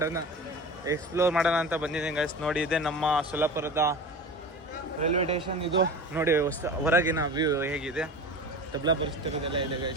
ಮಾಡೋಣ ಅಂತ ಬಂದಿದ್ದೀನಿ ಗೈಸ್. ನೋಡಿ ಇದೆ ನಮ್ಮ ಸೊಲ್ಲಾಪುರದ ರೈಲ್ವೆ ಸ್ಟೇಷನ್. ಇದು ನೋಡಿ ಹೊರಗಿನ ವ್ಯೂ ಹೇಗಿದೆ. ತಬ್ಲಾ ಪರಿಸ್ಥಿತಿದೆಲ್ಲ ಇದೆ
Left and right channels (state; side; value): normal; both; correlation 0.32